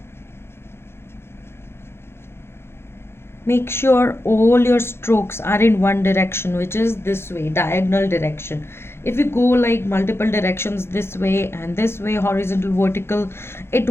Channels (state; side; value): late; right; 0.12 ms